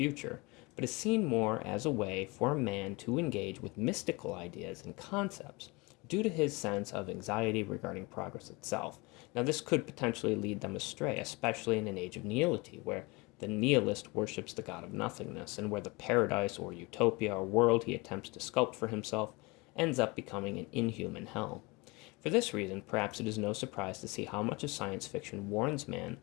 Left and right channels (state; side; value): quieter; right; 25.8 dB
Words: but is seen more as a way for a man to engage with mystical ideas and concepts, due to his sense of anxiety regarding progress itself. Now, this could potentially lead them astray, especially in an age of nihility, where the nihilist worships the god of nothingness, and where the paradise or utopia or world he attempts to sculpt for himself ends up becoming an inhuman hell. For this reason, perhaps it is no surprise to see how much of science fiction warns man